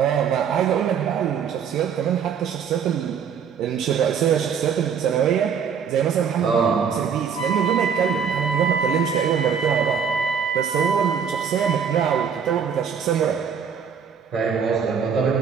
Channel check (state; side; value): quieter; left; 7.1 dB